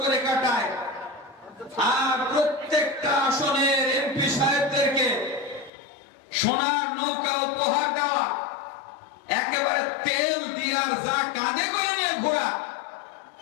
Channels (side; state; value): right; drops out; at 5.7 s